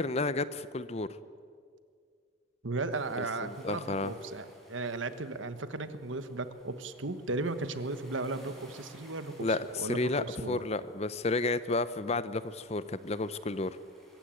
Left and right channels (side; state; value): both; normal; correlation 0.19